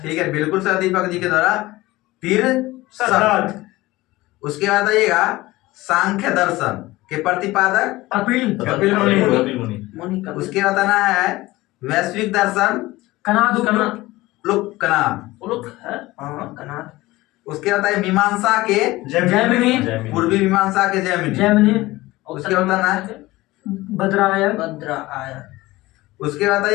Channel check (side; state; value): right; quieter; 19.0 dB